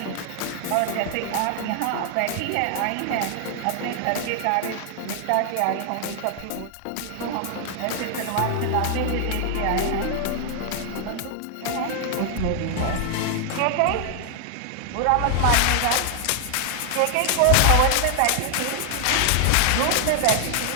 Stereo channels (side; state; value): both; different; correlation 0.00